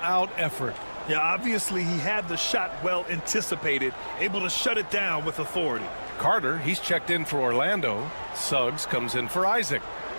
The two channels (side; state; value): both; inverted; correlation -1.00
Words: effort. Yeah, obviously he had the shot well anticipated, able to shut it down with authority. Carter, he's checked in for Orlando. Suggs comes in for Isaac.